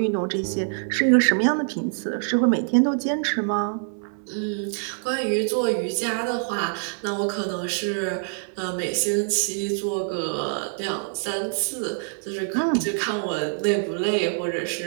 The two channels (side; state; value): left; silent; 62 dB below the other